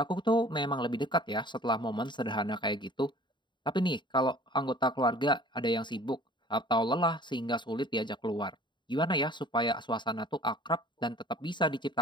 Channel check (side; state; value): right; late; 0.22 ms